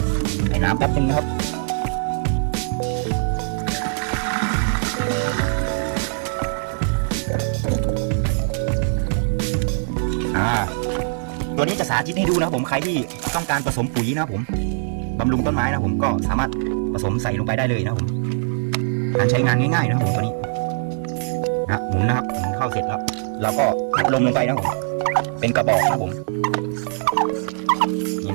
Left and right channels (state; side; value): silent; left; 64 dB below the other